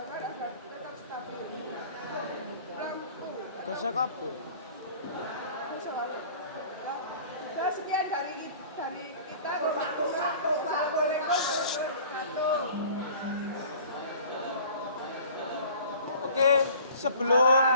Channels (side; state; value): both; inverted; correlation -0.47